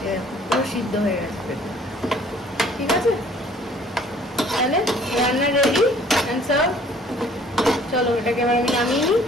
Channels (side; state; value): both; normal; correlation 0.55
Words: পুরো সিদ্ধ হয়ে গেছে পেঁপে, ঠিক আছে? তাহলে রান্না রেডি অ্যান্ড সার্ভ। চলো এটাকে এবার আমি নামিয়ে নিই।